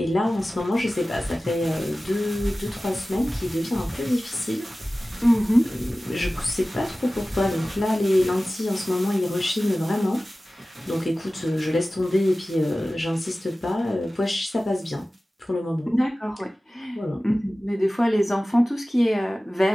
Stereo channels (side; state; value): both; normal; correlation 0.97